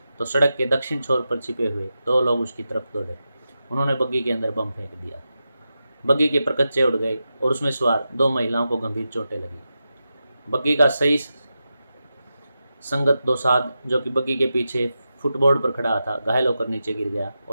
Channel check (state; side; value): inverted; both; correlation -0.90